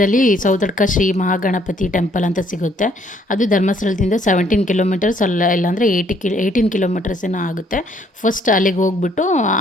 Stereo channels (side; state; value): both; normal; correlation 0.65